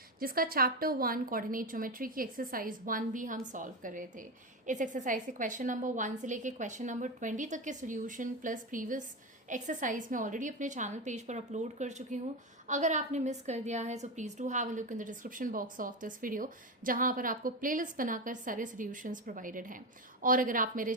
जिसका चैप्टर 1 कोऑर्डिनेट ज्योमेट्री की एक्सरसाइज 1 भी हम सॉल्व कर रहे थे। इस एक्सरसाइज के क्वेश्चन नंबर 1 से लेके क्वेश्चन नंबर 20 तक के सोल्यूशन प्लस प्रीवियस एक्सरसाइज में ऑलरेडी अपने चैनल पेज पर अपलोड कर चुकी हूँ। अगर आपने मिस कर दिया है तो please do have a look in the description box of this video, जहां पर आपको प्लेलिस्ट बनाकर सारे सॉल्यूशंस प्रोवाइडेड हैं। और अगर आप मेरे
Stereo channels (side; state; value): both; normal; correlation 0.16